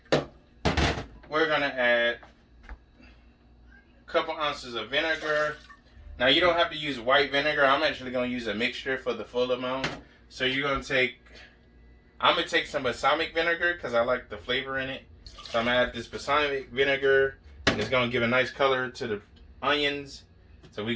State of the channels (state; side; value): identical; both; correlation 1.00